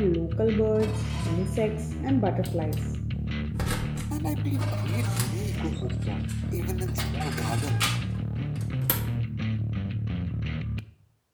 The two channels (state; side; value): identical; both; correlation 1.00